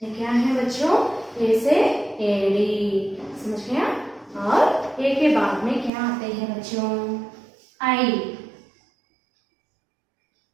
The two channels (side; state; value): left; drops out; at 5.9 s